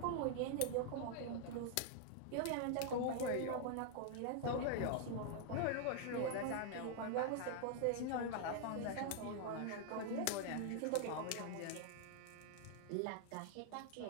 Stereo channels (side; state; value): both; different; correlation 0.00